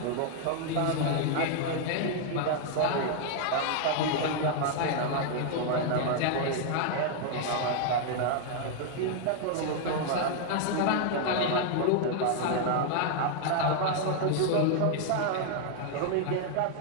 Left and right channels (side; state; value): both; different; correlation 0.00